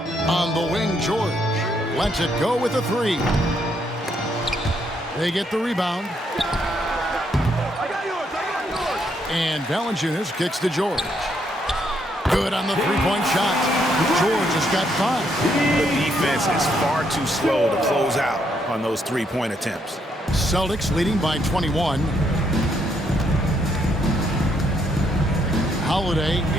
On the wing, George lets it go with a 3. They get the rebound. And Valanciunas kicks to George. Good on the three-point shot. George has got 5. The defense is far too slow to close out on those three-point attempts. Celtics leading by 21. Holiday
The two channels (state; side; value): normal; both; correlation 0.74